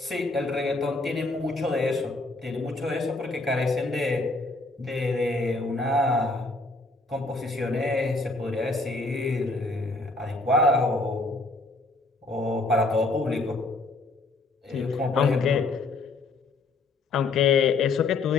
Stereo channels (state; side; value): quieter; right; 3.3 dB